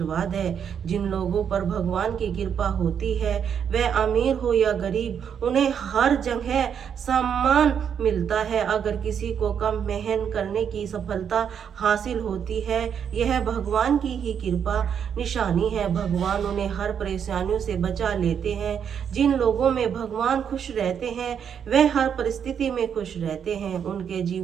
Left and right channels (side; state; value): left; quieter; 7.9 dB